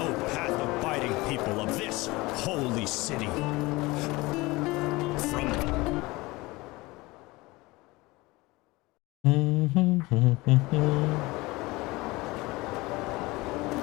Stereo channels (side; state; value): right; quieter; 21.9 dB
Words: path-abiding people of this holy city. From